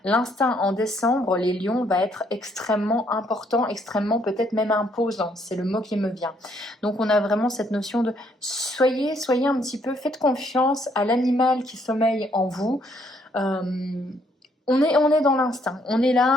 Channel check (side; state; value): both; normal; correlation 0.69